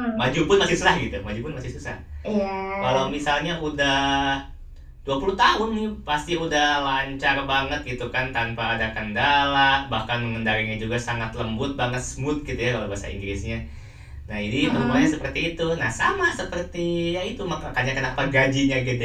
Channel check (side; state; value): both; identical; correlation 1.00